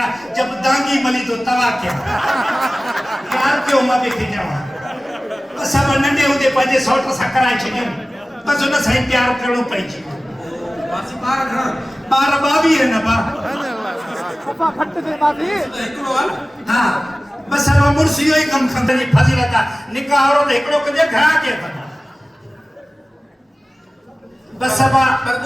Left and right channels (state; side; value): normal; both; correlation 0.97